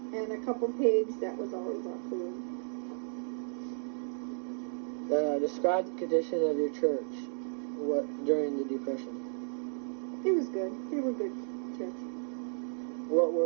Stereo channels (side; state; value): left; silent; digital silence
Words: a couple pigs. That was always our food. Describe the condition of your church during the Depression. It was good. They were good church. What